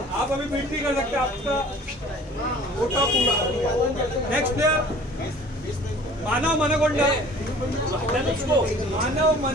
आप अभी बीट नहीं कर सकते, आपका कोटा पूरा। नेक्स्ट प्लेयर मानव मनगोंडा। मानव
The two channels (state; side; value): normal; both; correlation 0.48